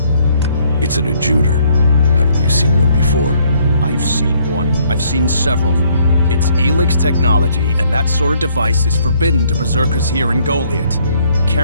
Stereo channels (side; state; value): both; inverted; correlation -0.66